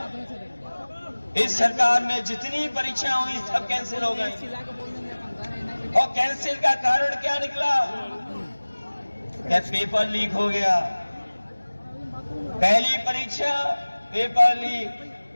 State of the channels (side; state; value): both; inverted; correlation -1.00